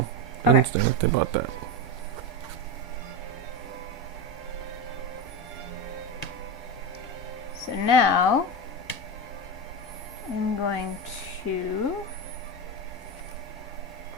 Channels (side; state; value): both; normal; correlation 0.16